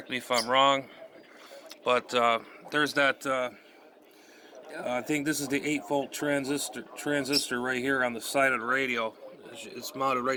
me if I'm wrong. But there's that, I think this is the 8-volt transistor right here on the side of the radio. It's mounted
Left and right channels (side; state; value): both; identical; correlation 1.00